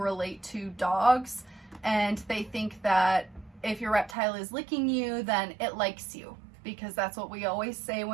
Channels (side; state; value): left; drops out; at 4.2 s